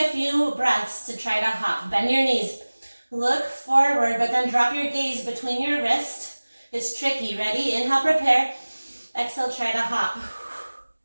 few breaths to try to hop. Bend your knees. Look forward, but then drop your gaze between your wrists. It's tricky. Ready? Inhale, prepare. Exhale, try to hop.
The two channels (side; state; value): both; inverted; correlation -1.00